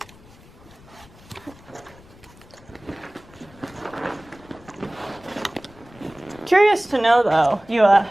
Curious to know though, you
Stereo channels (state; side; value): noise; left; rumble, 24 dB below the sound